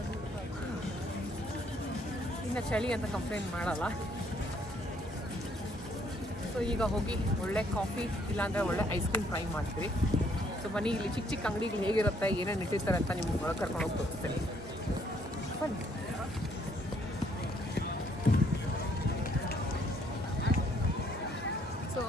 ಇನ್ನು ಚಳಿ ಅಂತ ಕಂಪ್ಲೇಂಟ್ ಮಾಡಲ್ಲ. ಸೊ ಈಗ ಹೋಗಿ ಒಳ್ಳೆ ಕಾಫಿ ಇಲ್ಲಾಂದರೆ ಒಳ್ಳೆ ಐಸ್ ಕ್ರೀಮ್ ಟ್ರೈ ಮಾಡ್ತೀವಿ. ಸೊ ಬನ್ನಿ ಇಲ್ಲಿ ಚಿಕ್ಕ ಚಿಕ್ಕ ಅಂಗಡಿಗಳು ಹೇಗಿರುತ್ತೆ, ಏನೇನು ಇಟ್ಟಿರ್ತಾರೆ ಅಂತ ನಿಮ್ಗೆ ಒಳಗೆ ಕರ್ಕೊಂಡು ಹೋಗಿ ತೋರಿಸ್ತೀನಿ. ಬನ್ನಿ. ಸೊ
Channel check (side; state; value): both; normal; correlation 0.67